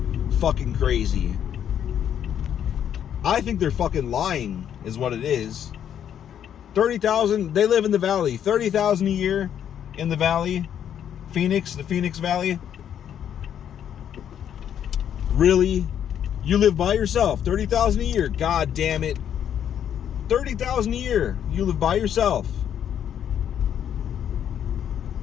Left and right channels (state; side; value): quieter; right; 9.4 dB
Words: fucking crazy. I think they're fucking lying, is what it is. 30,000, they live in the valley. 30,000 a year in the valley. Phoenix, the Phoenix Valley. Really? You live by yourself. 30,000 a year. God damn it. 30,000 a year. You live by yourself.